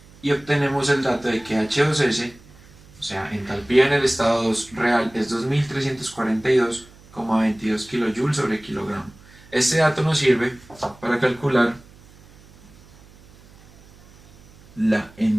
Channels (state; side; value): noise; right; hum, 25 dB below the sound